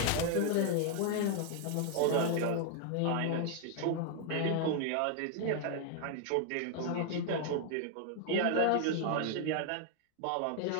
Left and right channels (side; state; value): both; different; correlation 0.00